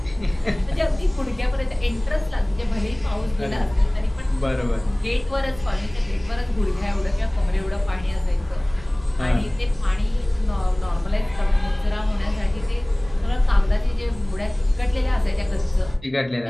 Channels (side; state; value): right; noise; rumble, 20 dB below the sound